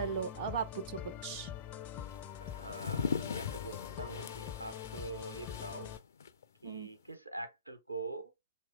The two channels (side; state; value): both; inverted; correlation -0.44